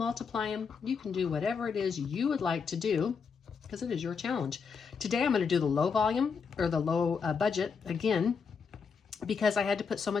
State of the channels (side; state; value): right; quieter; 5.8 dB